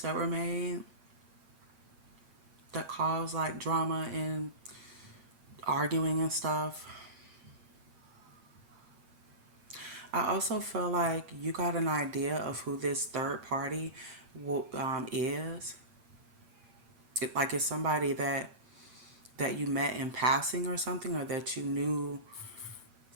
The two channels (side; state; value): left; late; 8.8 ms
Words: that were made that caused like drama and arguing and stuff. I also feel like you got an idea of who this third party is. Like it's somebody that you met in passing or something, or that you knew